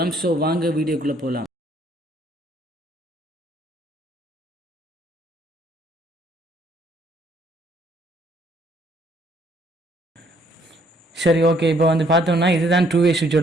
ஸோ வாங்க வீடியோக்குள்ளே போகலாம். சரி, ஓகே. இப்போ வந்து பார்த்தோம்னா இதுதான் டூ வே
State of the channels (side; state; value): both; normal; correlation 0.65